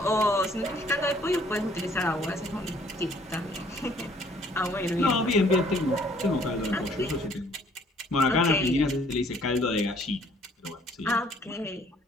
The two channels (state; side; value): normal; both; correlation 0.60